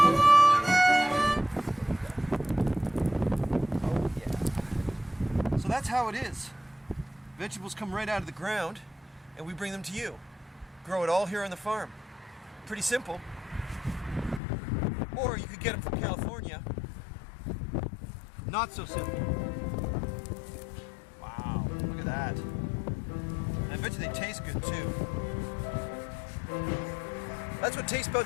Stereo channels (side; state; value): right; drops out; at 14.4 s